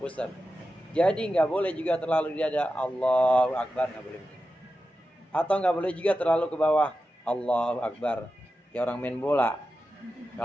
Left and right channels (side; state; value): both; normal; correlation 0.92